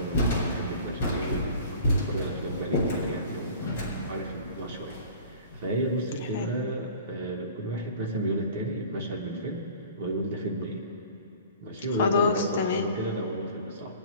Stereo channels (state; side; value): inverted; both; correlation -0.44